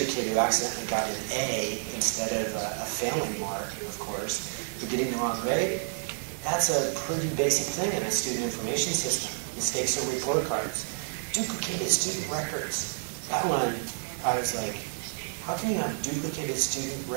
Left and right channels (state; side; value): silent; left; digital silence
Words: kid who accidentally got an A instead of a failing mark, of course. For getting the wrong grade, that's a pretty basic thing in a student information system. Mistakes on report cards. Duplicated student records. That one, I was like, how can you have duplicated student